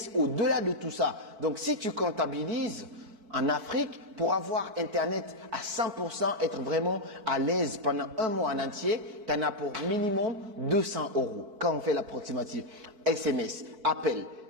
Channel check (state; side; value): late; left; 4.6 ms